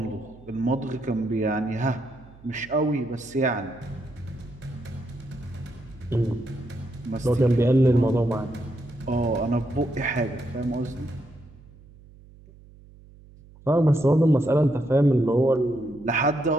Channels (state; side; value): noise; right; hum, 23 dB below the sound